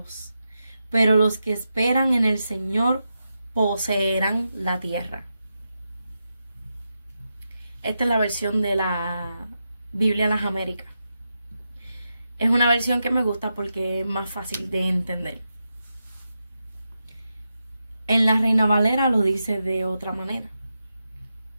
pero los que esperan en el Señor poseerán la tierra. Esta es la versión de la Biblia Las Américas. Es una versión que me gusta porque es más fácil de entender. En la Reina Valera lo dice de otra manera.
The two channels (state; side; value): inverted; both; correlation -0.88